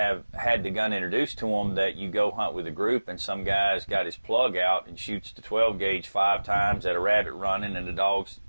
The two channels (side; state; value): both; inverted; correlation -1.00